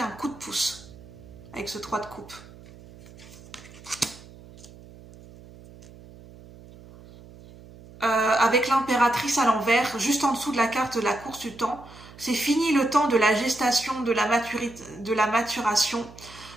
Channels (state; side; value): noise; right; hum, 20 dB below the sound